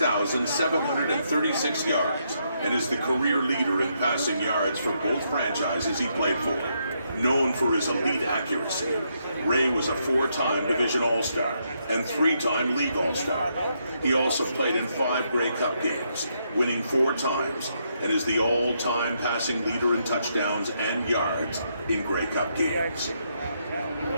yards, and is the career leader in passing yards for both franchises he played for. Known for his elite accuracy, Ray was a 4-time Division All-Star and 3-time League All-Star. He also played in 5 Grey Cup games, winning 4 times, and is the all-time passing leader in touchdowns and yards in Grey Cup games.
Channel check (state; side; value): inverted; both; correlation -0.77